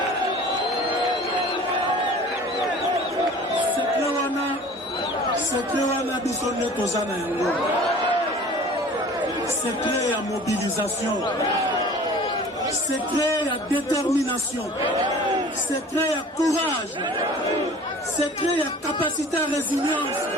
Secret wana biso nde toza na yango. Secret ya mobilisation, secret ya détermination, secret ya courage, secret ya capacité à résilience,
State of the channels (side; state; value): both; normal; correlation 0.45